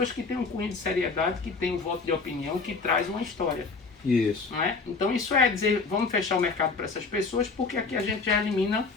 que têm um cunho de seriedade, que têm um voto de opinião, que traz uma história. Isso. Não é? Então isso é dizer, vamos fechar o mercado para essas pessoas, porque aqui a gente já elimina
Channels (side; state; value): right; quieter; 4.3 dB